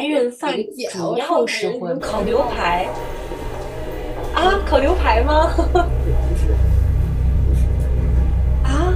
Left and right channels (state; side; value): identical; both; correlation 1.00